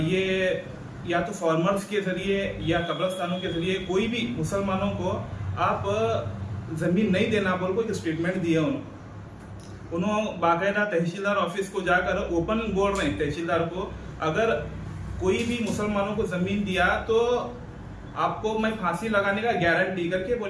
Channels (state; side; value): identical; both; correlation 1.00